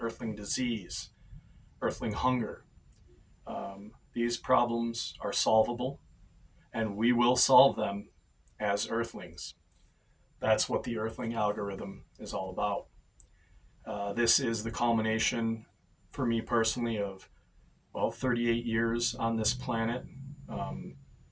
disease, Earthling hunger. These problems are solvable, and we will solve them as Earthlings. That's what the Earthling algorithm is all about. This is the culmination for me personally of, 38 years on this planet. Um,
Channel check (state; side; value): identical; both; correlation 1.00